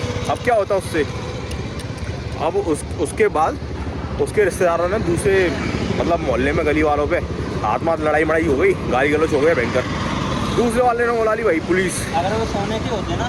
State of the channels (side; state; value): both; identical; correlation 1.00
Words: अब क्या होता उससे, अब उसके बाद उसके रिश्तेदारों ने दूसरे मतलब मोहल्ले में गली वालों पे हाथ लड़ाई मड़ाई हो गई, गाली गलौच हो गया भयंकर। दूसरे वाले ने बुला ली भाई पुलिस। अगर वो सोने के होते